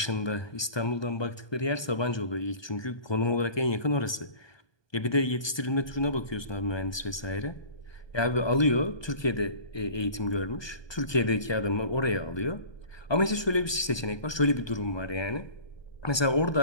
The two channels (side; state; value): right; late; 1.2 ms